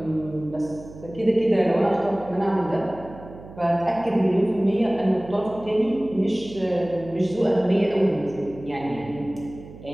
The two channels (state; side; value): noise; right; hum, 17 dB below the sound